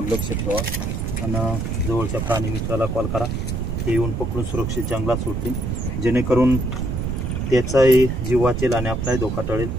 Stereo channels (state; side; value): noise; right; rumble, 2 dB below the sound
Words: लक्ष ठेवा आणि जवळच्या प्राणी मित्राला कॉल करा, ते येऊन पकडून सुरक्षित जंगलात सोडतील, जेणेकरून त्याचाही जीव वाचेल आणि आपलाही धोका टळेल।